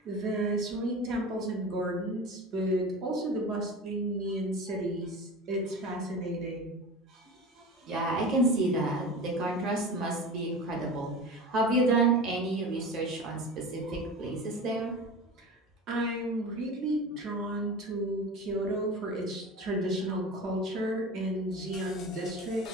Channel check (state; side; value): normal; both; correlation 0.32